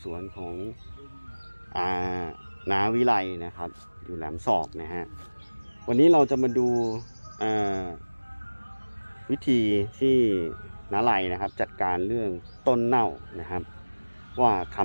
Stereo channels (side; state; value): both; inverted; correlation -1.00